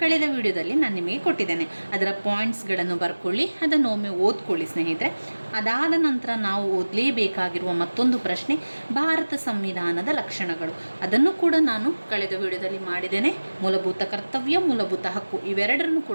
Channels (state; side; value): inverted; both; correlation -1.00